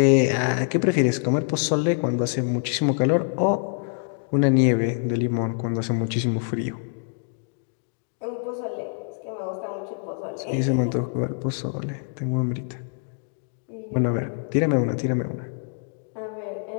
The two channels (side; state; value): right; silent; 58 dB below the other